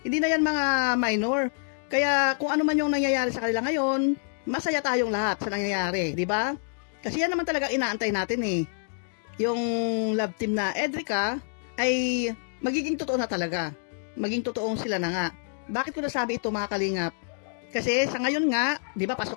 Hindi na yan mga minor. Kaya kung ano man yung nangyayari sa kanila ngayon, masaya tayong lahat sa nangyayari, di ba? Kasi yan naman talaga inaantay natin eh. Yung love team na Edrica ay magiging totoo na talaga. Maging totoong sila na nga. Bakit ko nasabi ito mga kalingap? Kasi sa ngayon nga, di ba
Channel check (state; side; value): silent; right; digital silence